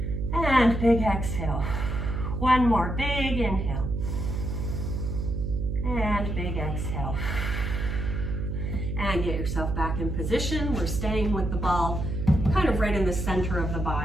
And big exhale. One more big inhale. And big exhale. And get yourself back in position. We're staying with the ball kind of right in the center of the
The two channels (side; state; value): right; noise; hum, 3 dB below the sound